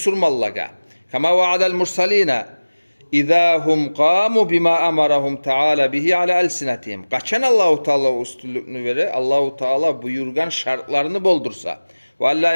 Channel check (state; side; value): inverted; both; correlation -1.00